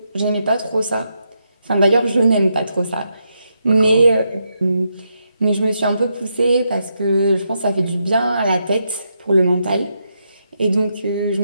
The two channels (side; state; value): both; inverted; correlation -0.82